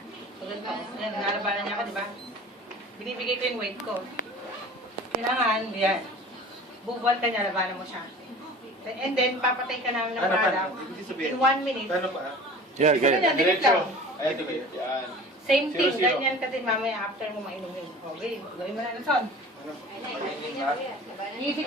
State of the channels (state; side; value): normal; both; correlation 0.41